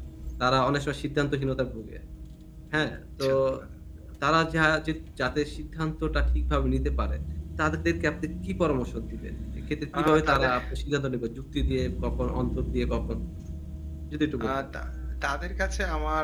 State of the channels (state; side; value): identical; both; correlation 1.00